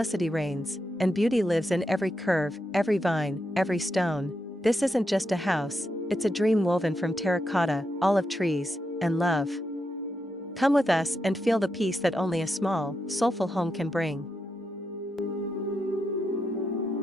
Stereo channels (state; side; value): normal; both; correlation 0.84